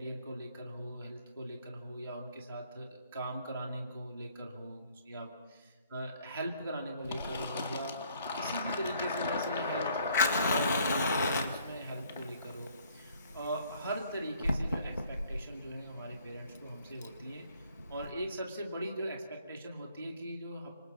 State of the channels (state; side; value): inverted; both; correlation -0.62